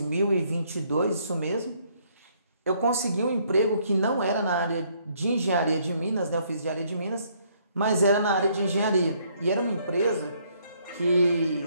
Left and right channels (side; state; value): both; inverted; correlation -0.67